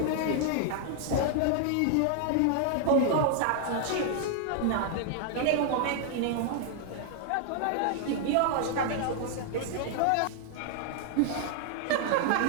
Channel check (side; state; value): both; different; correlation 0.00